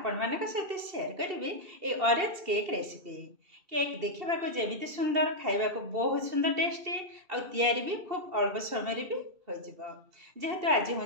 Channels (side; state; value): left; late; 2.7 ms